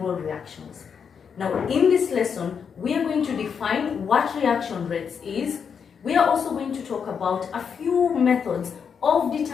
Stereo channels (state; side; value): quieter; right; 6.7 dB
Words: reactions. Now, in this lesson, we are going to define what reaction rates is. We are also going to talk about a few methods of